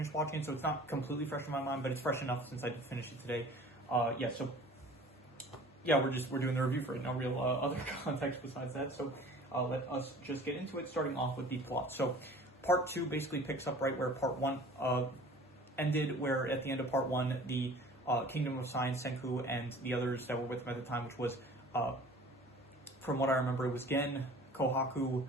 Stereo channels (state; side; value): normal; both; correlation 0.46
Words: watching it, so it's not completely fresh in my mind, but it's fresh enough since I did finish it today. We're doing the review for it. No real other context besides that, so let us just get into it, starting off with the plot. So, Part 2 basically picks up right where Part 1 ended, where at the end of Part 1, the Kingdom of Science, Senku, and the others that were with him at the time, which was, from what I remember, it was Gen, Kohaku,